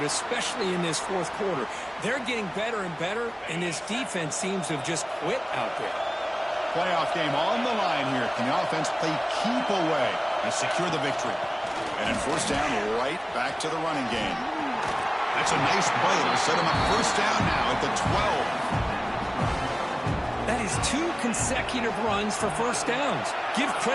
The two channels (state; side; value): identical; both; correlation 1.00